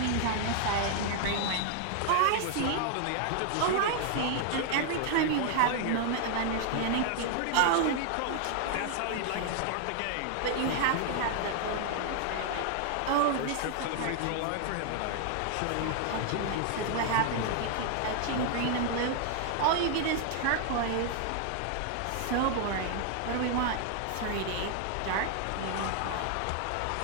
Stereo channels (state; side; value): different; both; correlation 0.00